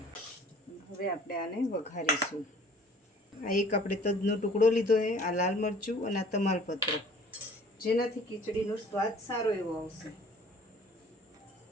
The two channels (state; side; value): normal; both; correlation 0.51